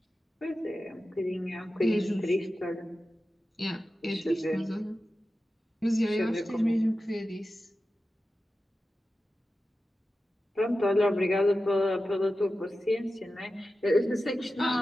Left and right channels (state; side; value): normal; both; correlation 0.93